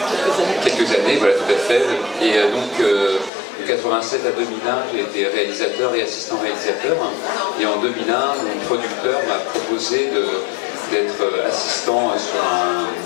quelques années, voilà tout à fait. Et donc de 87 à 2001 j'ai été réalisateur et assistant réalisateur. Et en 2001 mon producteur m'a proposé d'être assistant sur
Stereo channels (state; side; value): drops out; right; at 3.3 s